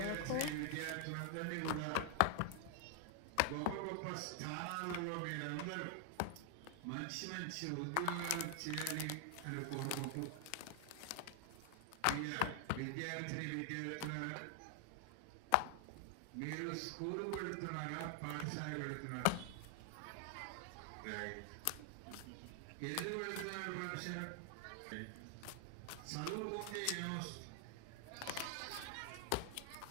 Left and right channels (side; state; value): both; different; correlation 0.00